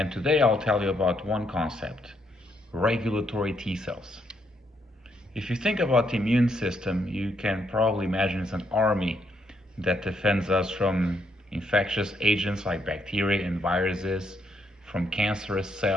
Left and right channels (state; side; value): normal; both; correlation 0.75